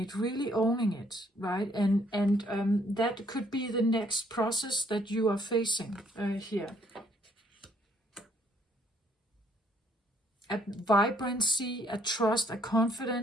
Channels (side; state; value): both; normal; correlation 0.66